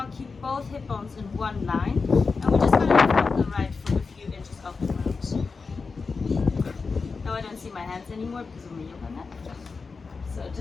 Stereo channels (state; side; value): quieter; right; 4.6 dB